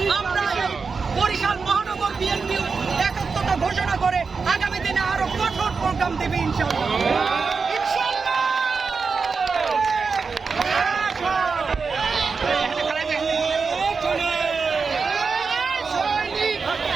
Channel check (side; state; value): left; quieter; 4.9 dB